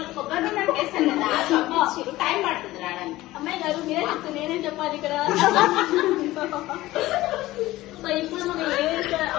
కొబ్బరి నూనె వేస్తాను కదా, పంపించారు. టైం పడుతుంది రావడానికి. అమ్మాయి గారు మీరే చెప్తే నేనేం చెప్పాలి ఇక్కడ? సో ఇప్పుడు మనం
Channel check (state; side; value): quieter; right; 17.2 dB